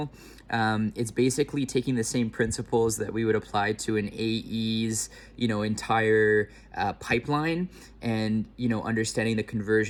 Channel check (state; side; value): identical; both; correlation 1.00